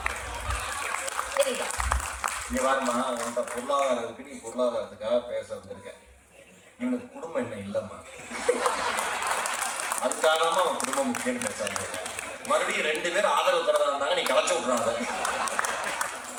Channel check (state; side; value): identical; both; correlation 1.00